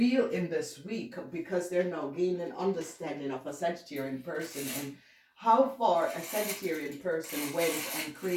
in this week, because they're now gaining understanding of a Sagittarian person and how far a Sagittarian person went and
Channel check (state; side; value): identical; both; correlation 1.00